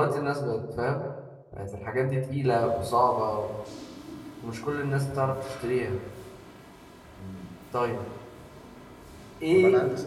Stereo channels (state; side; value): identical; both; correlation 1.00